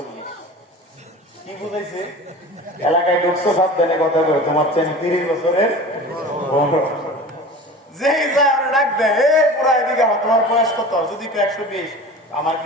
কি বুঝাইছে? এলাকায় ঢুকছো, সাবধানে কথা বলে, তোমার চেন 30 বছরের যেই যায় আমরা ডাক দেয়, এই বুড়া এদিকে, তোমার বয়স কত? যদি 120, আমার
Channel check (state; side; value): normal; both; correlation 0.37